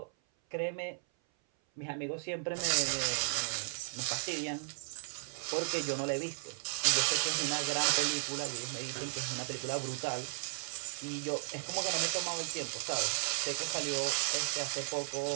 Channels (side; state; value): left; silent; 54 dB below the other